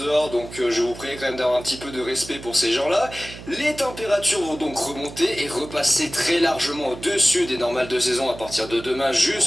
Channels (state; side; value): noise; right; hum, 14 dB below the sound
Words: donc je vous prie quand même d'avoir un petit peu de respect pour ces gens-là. Les températures vont donc remonter et repasser très largement au-dessus des normales de saison à partir de demain